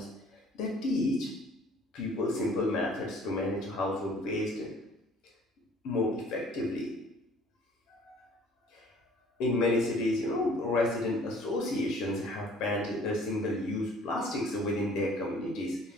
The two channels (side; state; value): both; normal; correlation 0.54